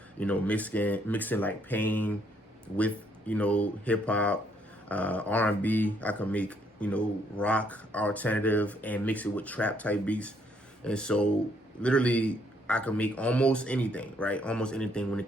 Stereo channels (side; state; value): both; normal; correlation 0.70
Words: mixing like pain with, hip hop, R&B. I can make, rock, alternative, and mix it with trap type beats. And so literally I can make almost anything, right? Almost anything when it